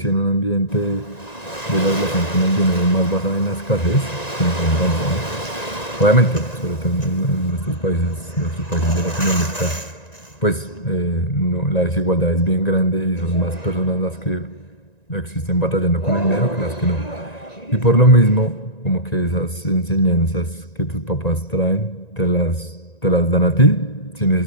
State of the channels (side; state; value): right; late; 1.9 ms